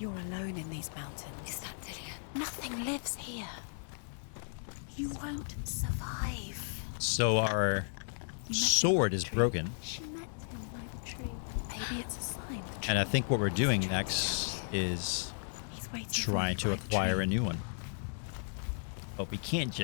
alone in these mountains. Is that Dillian? Nothing lives here. You won't survive. So our sword is broken. She met him by the tree. Maybe it's a sign. And I think what we're doing next is trying to acquire a new one. But we can't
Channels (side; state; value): right; silent; 55 dB below the other